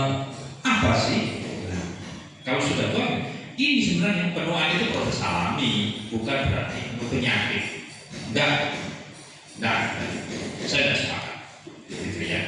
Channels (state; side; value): identical; both; correlation 1.00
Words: apa sih? Nah, kalau sudah tahu, ini sebenarnya penuaan itu proses alami, bukan berarti penyakit. Enggak, saya tidak sepakat. Gitu